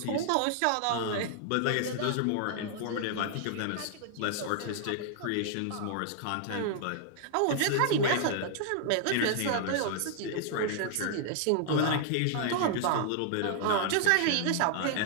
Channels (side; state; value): both; different; correlation -0.01